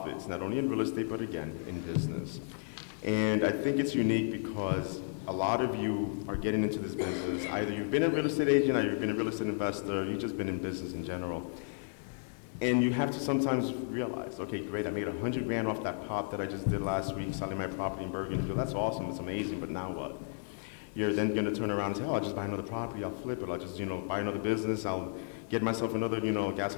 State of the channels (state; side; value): silent; right; digital silence